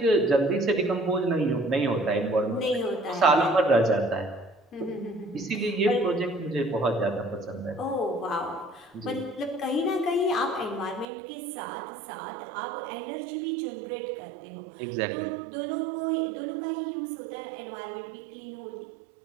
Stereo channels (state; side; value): drops out; left; at 11.1 s